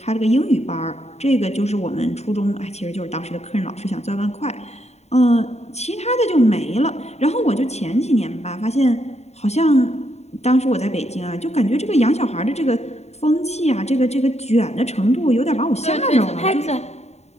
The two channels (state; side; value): late; right; 0.32 ms